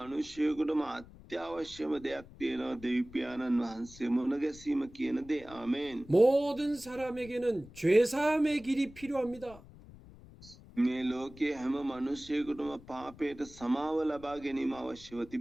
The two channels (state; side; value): noise; left; rumble, 20 dB below the sound